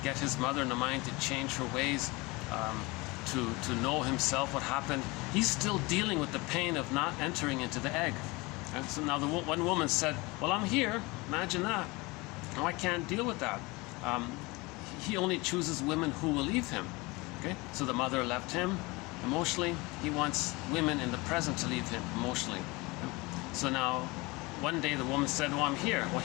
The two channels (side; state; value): right; quieter; 24.2 dB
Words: get his mother in the mind to change her ways, to know himself what happened. He's still dealing with the pain of not entering into the egg. And so now the one woman said, well, I'm here. Imagine that. No, I can't deal with that. He only chooses women who will leave him. Okay? So the mother left him emotionally. He wants women in the present to leave him emotionally. So now one day the woman said, well, I'm here. Well,